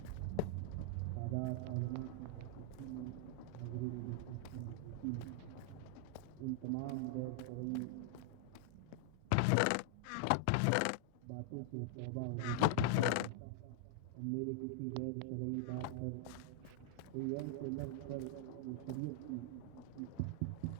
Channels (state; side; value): different; both; correlation 0.00